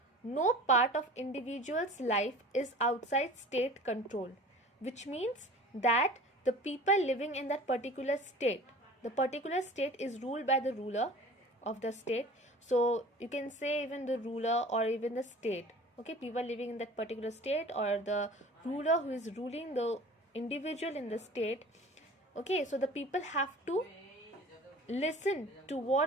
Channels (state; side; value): normal; both; correlation 0.42